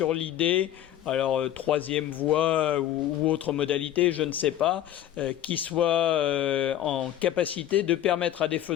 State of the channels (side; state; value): right; quieter; 11.9 dB